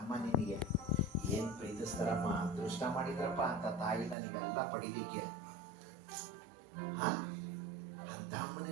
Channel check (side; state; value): left; drops out; at 4.2 s